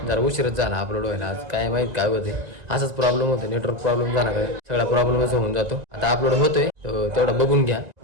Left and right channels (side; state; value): left; late; 1.9 ms